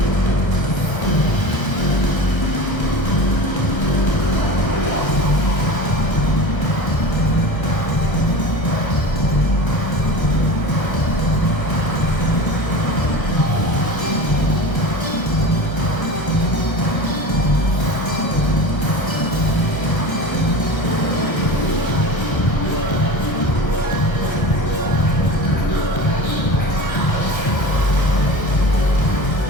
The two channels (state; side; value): late; right; 1.3 ms